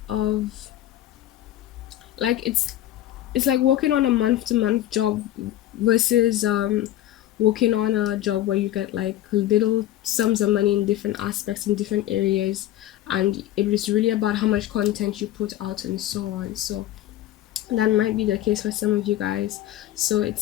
of, like, it's like working on a month to month job versus working on a job where you get like little sums of money in different aspects in different areas, and it is really about how much content you put out and so on. So that might be the case for some of you guys. So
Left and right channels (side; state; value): right; quieter; 13.5 dB